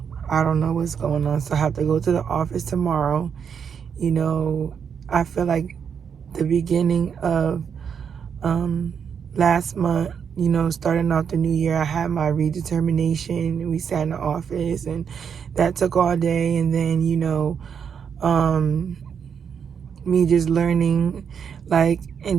don't know what's going on. So I have to go to the office tomorrow. I feel like the beginning of last month, starting off the new year, I had my redetermination. We sat in the office and that took all day. And then, me just learning, like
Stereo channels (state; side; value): quieter; left; 7.2 dB